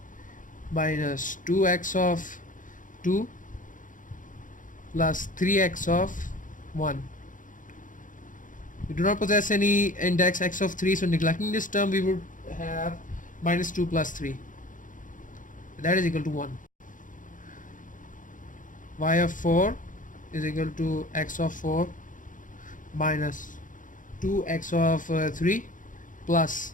minus 2x of 2 plus 3x of 1. We do not possess any index x of 3, so neglecting this term, we would have minus 2 plus 3, that is equal to 1. Y of 4 is equal to x of 4 minus 2x of 3 plus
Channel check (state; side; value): late; right; 0.38 ms